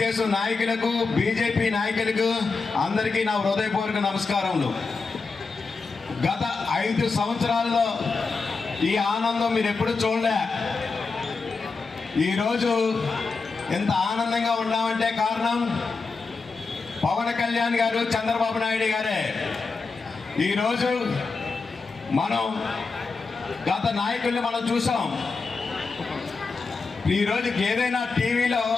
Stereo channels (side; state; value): right; quieter; 4.4 dB